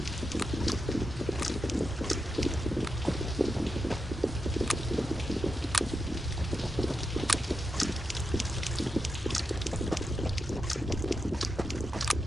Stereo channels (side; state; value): both; normal; correlation 0.87